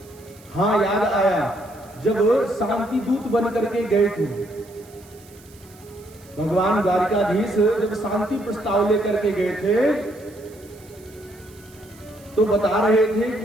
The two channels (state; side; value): noise; right; hiss, 25 dB below the sound